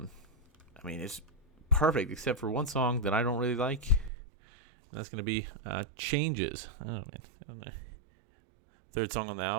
It's perfect except for one song that I don't really like, and that's going to be Changes. I don't know. Third song on the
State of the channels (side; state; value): left; drops out; at 4.1 s